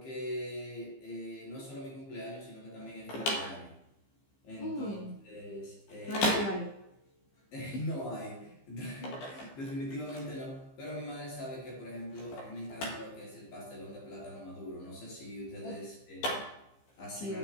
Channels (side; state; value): right; late; 15 ms